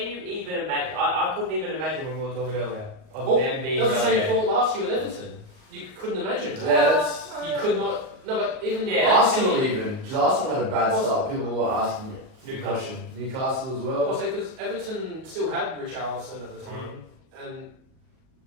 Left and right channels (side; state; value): left; late; 38 ms